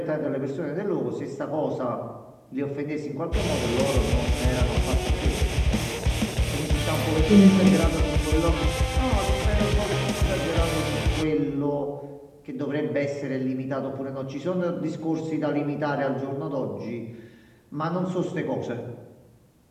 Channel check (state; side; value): identical; both; correlation 1.00